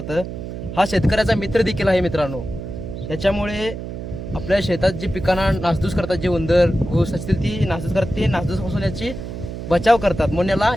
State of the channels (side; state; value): right; noise; hum, 8 dB below the sound